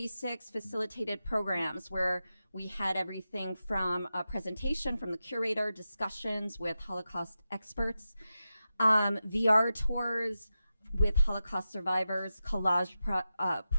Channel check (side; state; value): both; inverted; correlation -0.91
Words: facilitated programs where we had everything from a presentation from the curator, discussions with Holocaust experts, VR tours with Holocaust survivors, collage